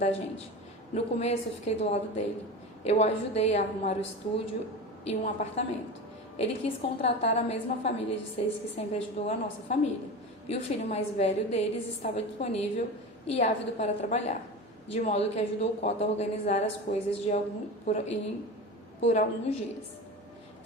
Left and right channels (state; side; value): normal; both; correlation 0.28